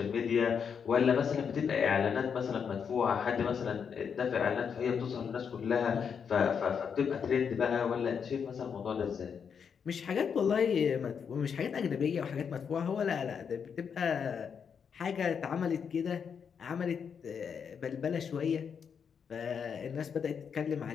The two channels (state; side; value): quieter; right; 6.8 dB